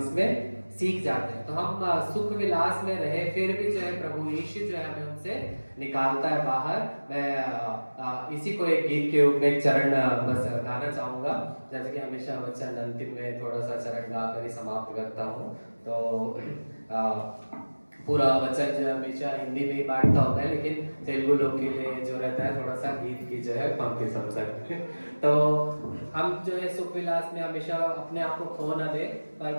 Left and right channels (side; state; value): both; inverted; correlation -1.00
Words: सीख जाते हैं। तो हम सुख विलास में रहे फिर भी जो है प्रभु यीशु जो है हमें उनसे निकालता है बाहर। मैं इसी को एक गीत के रूप में एक चरण बस गाना चाहूंगा, जैसे कि हमेशा वचन अंतिम में थोड़ा सा चरण गा कर ही समाप्त करता हूँ। तो पूरा वचन जो हमेशा हिंदी में ही बांटता होता है, लेकिन तेलुगु लोग के लिए जो रहता है थोड़ा सा गीत की जो है पंक्ति समझ सकते हैं। तो हम जो है सुख विलास में हमेशा अपने आप को खो न दे, पर